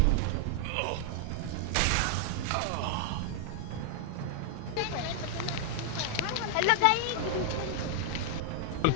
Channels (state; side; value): different; both; correlation 0.00